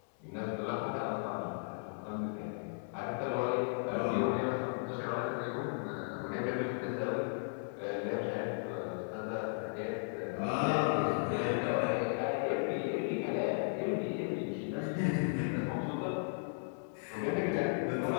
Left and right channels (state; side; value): silent; right; 54 dB below the other